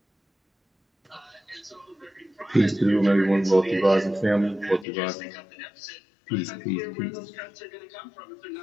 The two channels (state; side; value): drops out; right; at 4.9 s